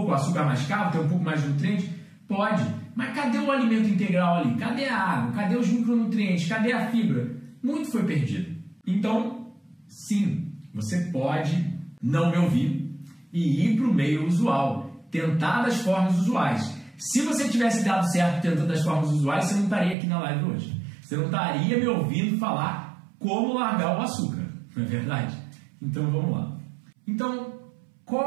o açúcar mascavo, ter um pouco mais de nutrientes? Pode. Mas cadê o alimento integral ali? Cadê a água? Cadê os micronutrientes? Cadê a fibra? Muito foi perdido. Então, sim, você pode não me ouvir e ir para o meio usual, tentar das formas usuais. Se você tivesse dado certo tentando das formas usuais, você não estaria aqui na live hoje. Você não estaria me ouvindo falar como largar o açúcar, não é verdade? Então vamos lá. Então,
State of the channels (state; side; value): drops out; left; at 20.0 s